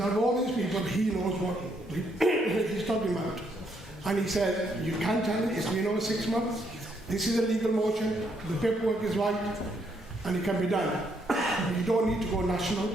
out of all these people, he knows what he's talking about. And he said, you can't tell it, it's been over 6 months, this is a legal motion, the paperwork is right, and it can be done. You don't need to go national.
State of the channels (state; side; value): normal; both; correlation 0.73